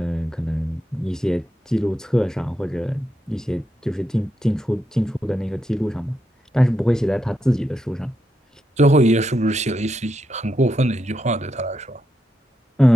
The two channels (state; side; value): normal; both; correlation 0.84